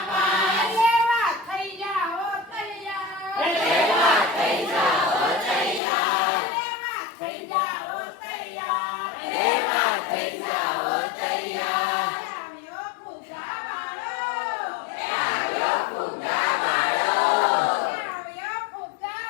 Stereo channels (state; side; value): drops out; right; at 5.8 s